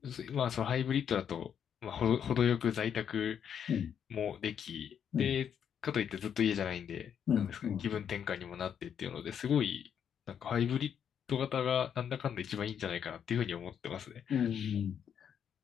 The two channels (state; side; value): quieter; right; 8.3 dB